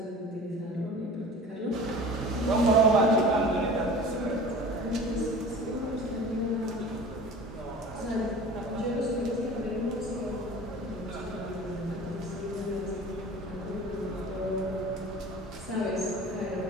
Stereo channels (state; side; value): normal; both; correlation 0.40